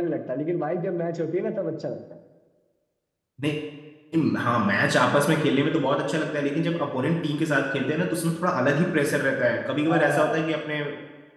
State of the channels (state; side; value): identical; both; correlation 1.00